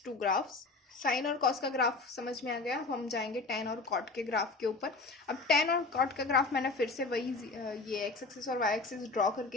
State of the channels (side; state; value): right; quieter; 3.6 dB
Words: 2 ग्राफ्स। साइन और कॉस का ग्राफ समझ में आ गया, हम जाएंगे टेन और कॉट के ग्राफ के ऊपर। अब टेन और कॉट का ग्राफ मैंने फिर से वही ये एक्स एक्सिस और वाई एक्सिस ड्रॉ